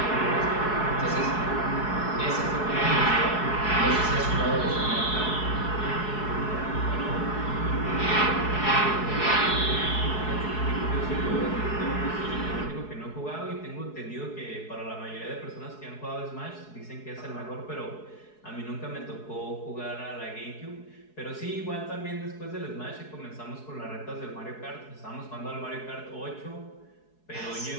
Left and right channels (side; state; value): right; late; 4.7 ms